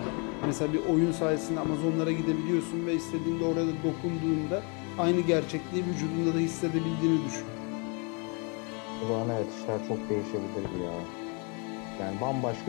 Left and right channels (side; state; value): right; quieter; 35.1 dB